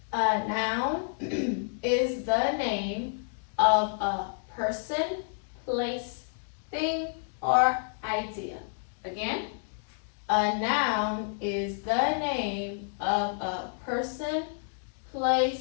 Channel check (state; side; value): silent; right; digital silence